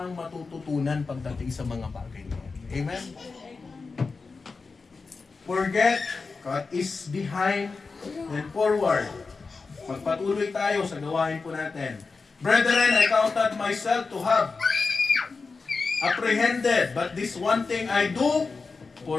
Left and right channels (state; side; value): quieter; right; 4.4 dB